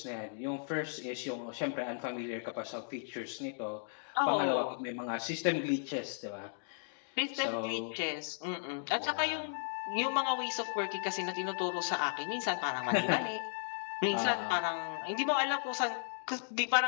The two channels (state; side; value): silent; right; digital silence